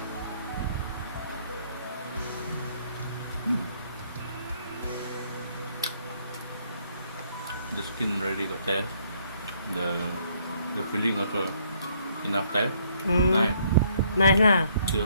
The skin already got taste. The filling also enough taste. Nice. Nice lah. Still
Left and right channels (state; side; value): inverted; both; correlation -0.67